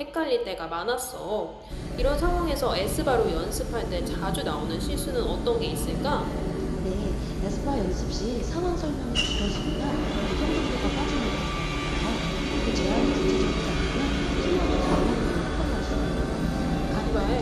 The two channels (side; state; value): both; identical; correlation 1.00